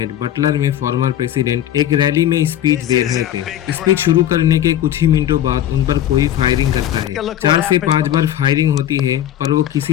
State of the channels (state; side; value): quieter; right; 11.5 dB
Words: बटलर में फॉर्मर प्रेसिडेंट एक रैली में स्पीच दे रहे थे। स्पीच शुरू करने के कुछ ही मिनटों बाद उन पर कोई फायरिंग करता है। 4 से 5 बार फायरिंग होती है पर वो